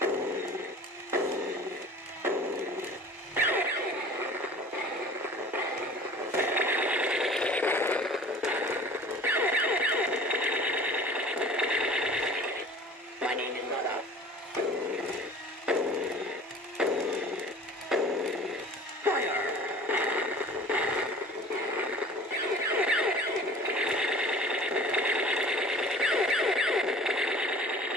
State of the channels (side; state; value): both; normal; correlation 0.43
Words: My name is Zadak. Fire!